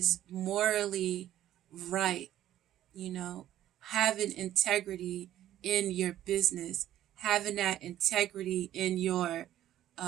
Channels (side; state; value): left; quieter; 12.5 dB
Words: morally right, having integrity in your business, having that integrity in your